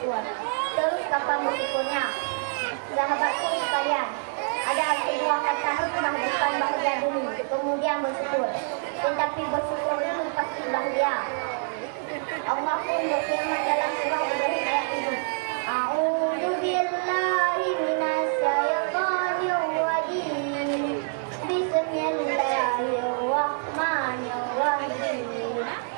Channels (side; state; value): left; silent; 61 dB below the other